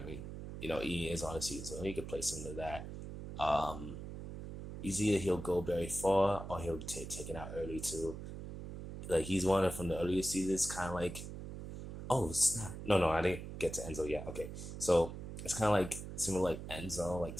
Ian is on the season, so he could play some of that. Um, He's either he'll go very far or he'll take taken out early too. Like he's one of from the earlier seasons, kind of like, oh snap, no, I didn't get to Enzo yet. Okay, so it's kind of like similar like Enzo, like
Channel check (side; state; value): right; noise; hum, 9 dB below the sound